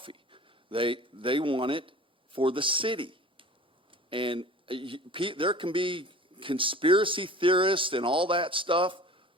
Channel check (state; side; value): normal; both; correlation 0.42